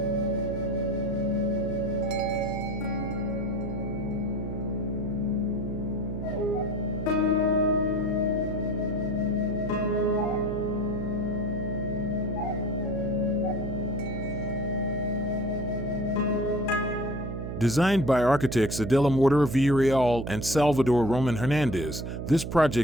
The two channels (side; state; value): right; noise; hum, 5 dB below the sound